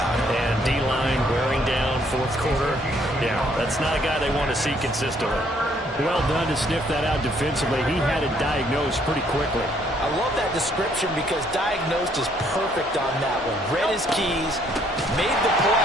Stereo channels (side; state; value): both; normal; correlation 0.66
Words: it. And D-line wearing down 4th quarter. Yeah, that's not a guy they want to see consistently. Well done to sniff that out defensively. He had it diagnosed pretty quickly. I love that description because diagnosed is perfect on that one. Read his keys, made the